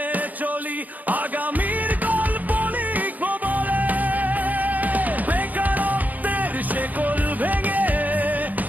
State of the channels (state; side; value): late; left; 0.080 ms